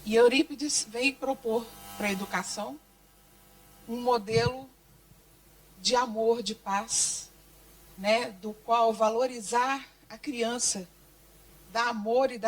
E Eurípides veio propor para a educação um modelo de amor, de paz, né, do qual valorizar a criança, dar amor e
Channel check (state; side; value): identical; both; correlation 1.00